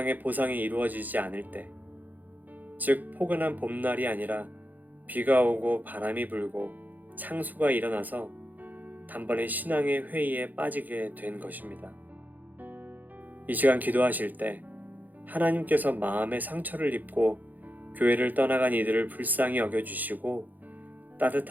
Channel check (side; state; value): left; late; 0.083 ms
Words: 보상이 이루어지지 않을 때, 즉 포근한 봄날이 아니라 비가 오고 바람이 불고 창수가 일어나서 단번에 신앙의 회의에 빠지게 된 것입니다. 이 시간 기도하실 때 하나님께서 마음의 상처를 입고 교회를 떠나간 이들을 불쌍히 여겨주시고